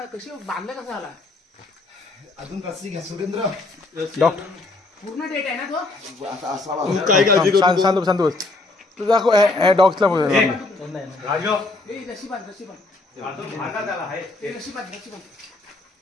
कशी बांधलं कसं आला अजून रस्सी घ्या सुरेंद्र. डॉक्टर पूर्ण डेट आहे ना तो आता असावा. काय काळजी करू शांत शांत बस. तू दाखव डॉग्सला बोल.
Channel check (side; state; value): right; quieter; 3.2 dB